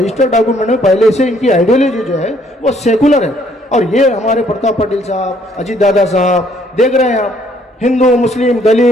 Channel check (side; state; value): both; normal; correlation 0.65